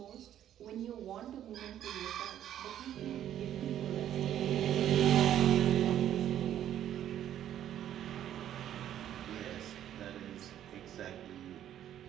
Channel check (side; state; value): left; quieter; 11.1 dB